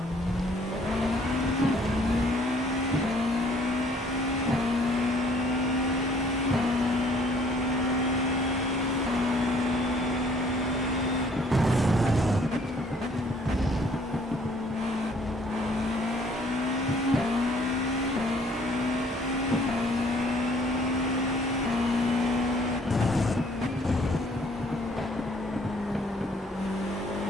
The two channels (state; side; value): normal; both; correlation 0.60